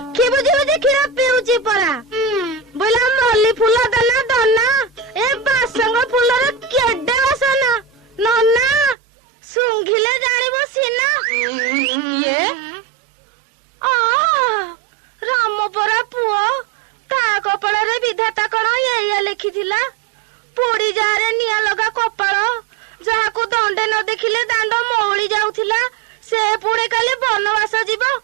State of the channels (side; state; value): left; drops out; at 9.0 s